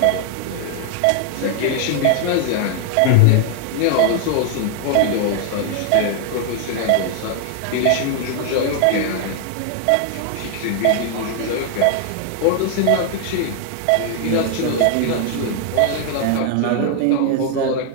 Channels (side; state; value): both; different; correlation 0.00